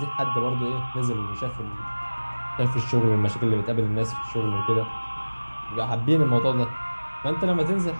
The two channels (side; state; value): both; inverted; correlation -1.00